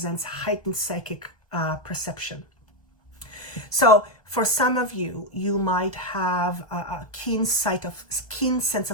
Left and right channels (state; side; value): late; right; 1.2 ms